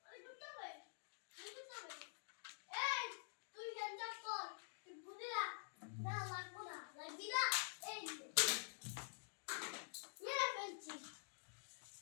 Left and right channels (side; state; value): right; silent; digital silence